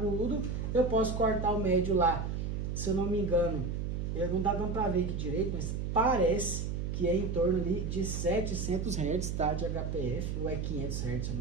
Eu posso cortar o médio lá, se eu não me engano, não dá dando para ver aqui direito, mas parece que é em torno ali de 700 Hz, tá, de HPF, ou é 500 Hz, se eu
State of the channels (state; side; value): noise; right; hum, 2 dB below the sound